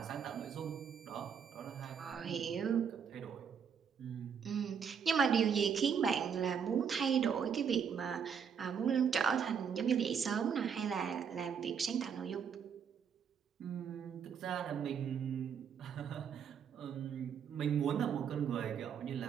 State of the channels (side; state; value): left; quieter; 7.2 dB